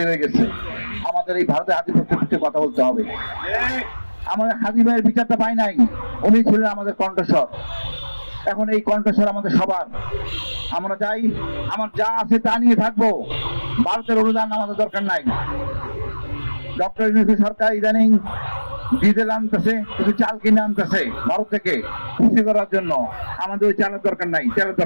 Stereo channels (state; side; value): inverted; both; correlation -1.00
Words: গেছে। আমাদের এই ভারতের আধিপত্যের বিরুদ্ধে কথা বলতে হবে। আমাদের হাদি ভাইয়ের বিচারটা পাই নাই, উনি ছিলেন আমাদের কণ্ঠস্বর। এখন এই কণ্ঠস্বর আমাদের সবার। আমরা চাই আমার যা আছে তা নিয়ে থাকবো, ভারতের অনুদান আমাদের দরকার নাই। ডক্টর ইউনূস সরকার ইদানিং ডিজেল আনতেছে, কিছু চাল কিনে আনতেছে ভারত থেকে খুশি করার জন্য। আমাদের ওই চালের দরকার নাই, তেলের